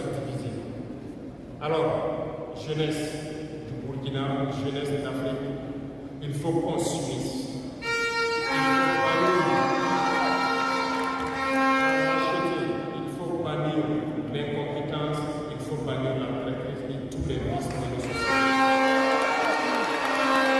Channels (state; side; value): identical; both; correlation 1.00